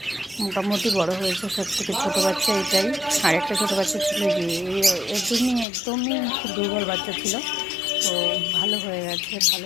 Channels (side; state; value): right; drops out; at 5.7 s